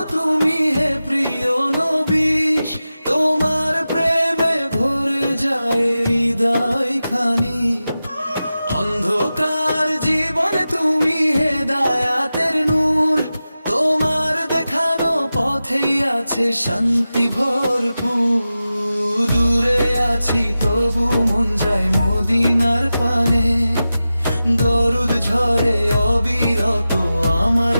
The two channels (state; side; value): inverted; both; correlation -0.94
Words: তুমি হে প্রিয় নবী, তোমার প্রেমে ভরে যায় হৃদয় খানি। অন্ধকার জীবনে তুমি হেদায়াতের নূর, তোমার দেখানো পথেই আছে শান্তি ভরপুর। দূরে আছি তবু মন যায় মদিনার পানে, দরুদ ঝরে অবিরত আমার